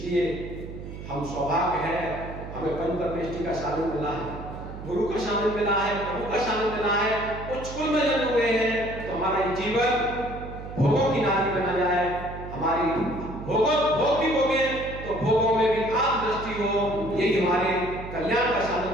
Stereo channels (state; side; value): noise; right; hum, 11 dB below the sound